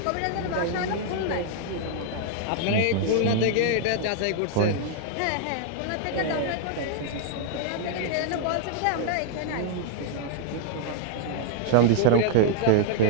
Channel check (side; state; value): both; different; correlation 0.00